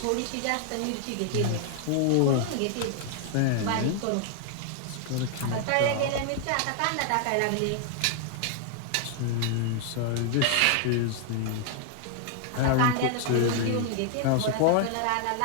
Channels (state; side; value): different; both; correlation 0.00